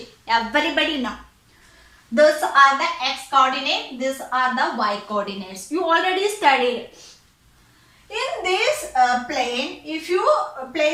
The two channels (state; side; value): identical; both; correlation 1.00